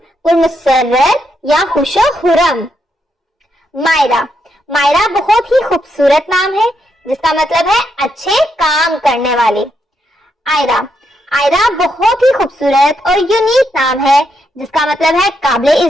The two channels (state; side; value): normal; both; correlation 0.79